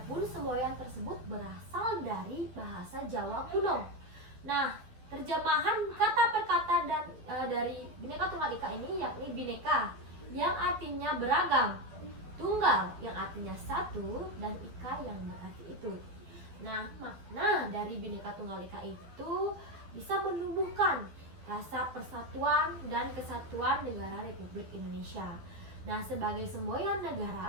semboyan tersebut berasal dari bahasa Jawa kuno. Nah, terjemahan kata per kata dan dari Bhinneka Tunggal Ika ini yakni bineka. yang artinya beragam, tunggal yang artinya satu, dan ika yang berarti itu. Nah, makna dari Bhinneka Tunggal Ika itu bisa menumbuhkan rasa persatuan dan kesatuan negara Republik Indonesia. Nah, sebagai semboyan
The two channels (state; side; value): late; left; 12 ms